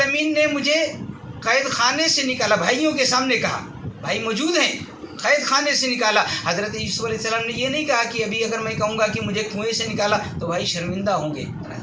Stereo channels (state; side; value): identical; both; correlation 1.00